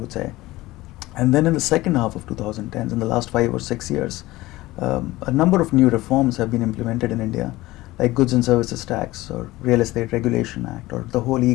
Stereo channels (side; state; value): right; quieter; 18.5 dB